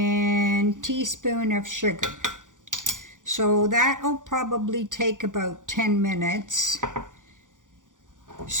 teaspoon of sugar. So that'll probably take about 10 minutes.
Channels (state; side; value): late; left; 0.87 ms